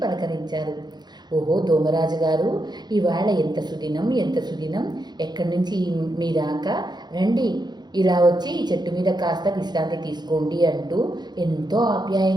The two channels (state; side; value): late; left; 0.21 ms